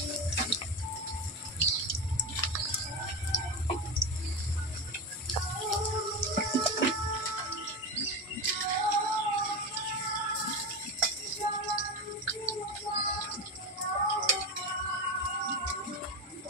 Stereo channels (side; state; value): both; normal; correlation 0.20